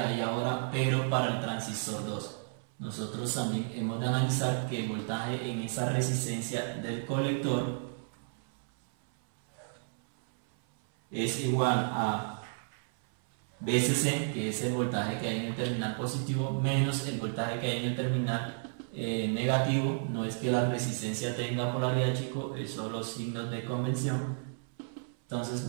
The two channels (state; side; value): silent; left; 56 dB below the other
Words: ahora, pero para el transistor 2. Nosotros también hemos de analizar que el voltaje en esa resistencia del colector es igual a VCC, que es el voltaje que hay en el terminal positivo, menos el voltaje que hay en el terminal negativo. No es que la resistencia tenga polaridad, chicos, es solo signos de convención. Entonces,